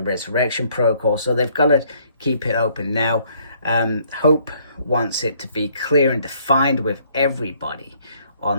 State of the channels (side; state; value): both; inverted; correlation -0.64